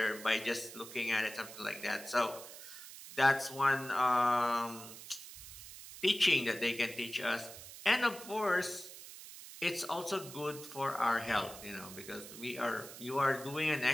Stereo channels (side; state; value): right; noise; hiss, 14 dB below the sound